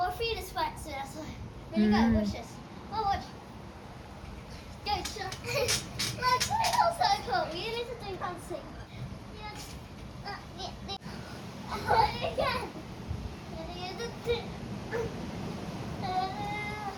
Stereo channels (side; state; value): both; identical; correlation 1.00